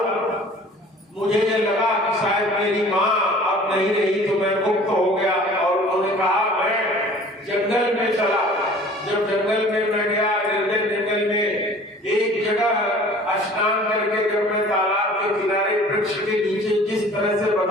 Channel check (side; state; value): both; normal; correlation 0.47